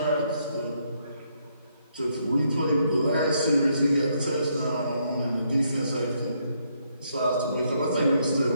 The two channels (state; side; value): inverted; both; correlation -0.74